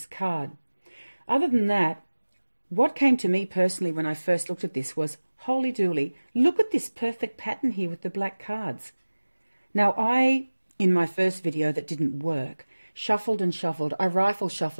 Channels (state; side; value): inverted; both; correlation -1.00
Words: card. Other than that, what came to me personally when I first looked at this was, holy dooly, look at this perfect pattern here with the black cards. Now I, in my first video that didn't work, shuffled and shuffled. I rifle